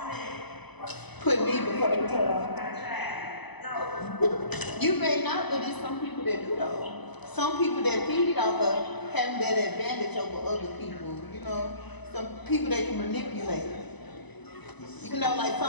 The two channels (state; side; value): late; right; 0.99 ms